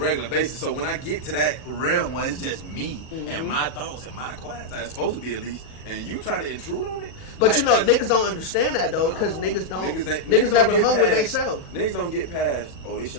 basis. So when I get to that realm where it's just me and my thoughts and my quiet time, it's supposed to be at least, and you try to intrude on it. But you know, niggas don't understand that though, because niggas never hung with themselves. Niggas don't get past, this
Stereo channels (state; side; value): late; right; 39 ms